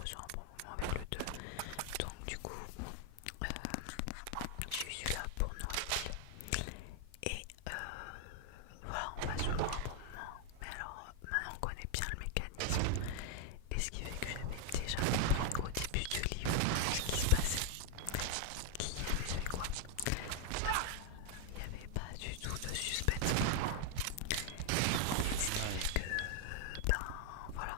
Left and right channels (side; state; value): both; different; correlation 0.00